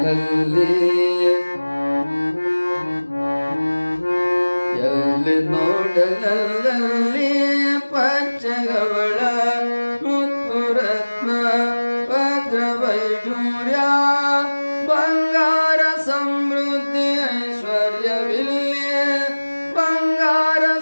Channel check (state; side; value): inverted; both; correlation -1.00